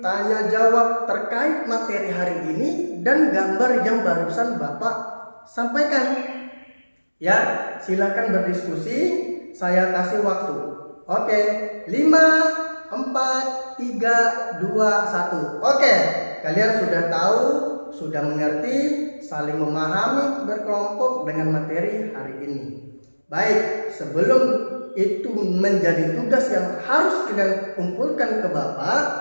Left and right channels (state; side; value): inverted; both; correlation -1.00